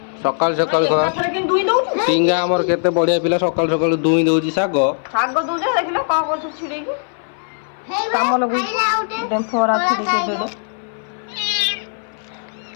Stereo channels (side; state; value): right; silent; 60 dB below the other